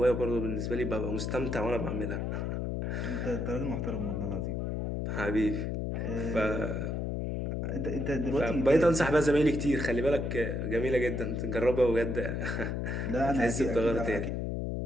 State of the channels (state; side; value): noise; left; hum, 1 dB below the sound